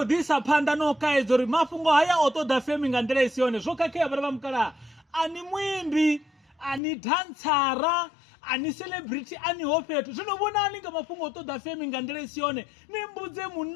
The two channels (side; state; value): right; drops out; at 6.8 s